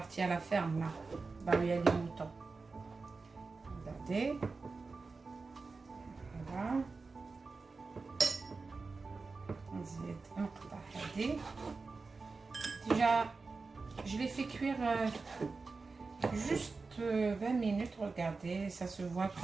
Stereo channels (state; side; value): quieter; left; 4.1 dB